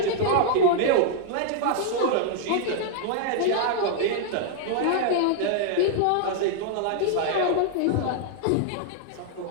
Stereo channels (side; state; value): both; different; correlation -0.01